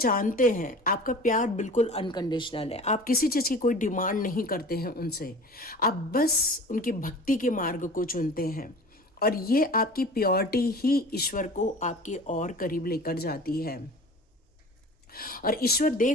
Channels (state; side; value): normal; both; correlation 0.40